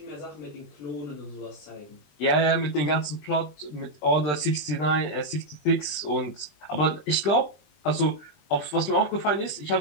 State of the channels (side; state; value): right; late; 20 ms